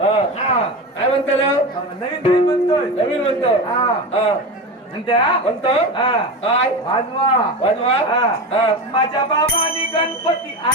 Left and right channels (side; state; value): both; normal; correlation 0.23